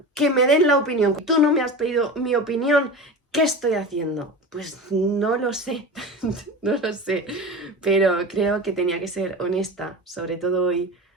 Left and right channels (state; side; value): normal; both; correlation 0.29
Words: que me den la opinión, tú no me has pedido mi opinión, ¿qué estoy haciendo? Pues no lo sé, no lo sé, pero creo que tenía que ser honesta, sobre todo hoy,